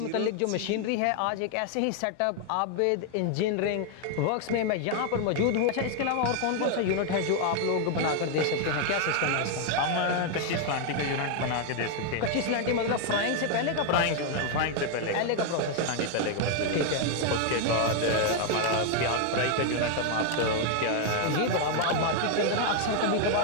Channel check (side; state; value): both; different; correlation 0.00